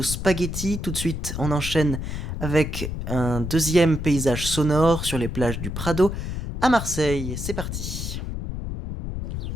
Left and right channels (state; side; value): noise; left; rumble, 5 dB below the sound